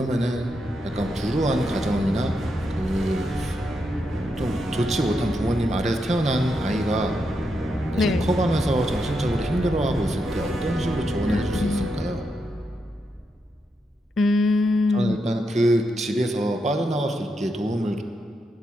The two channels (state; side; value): normal; both; correlation 0.83